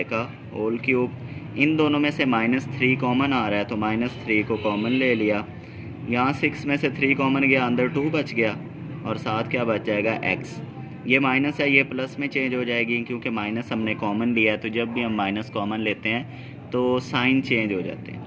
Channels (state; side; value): identical; both; correlation 1.00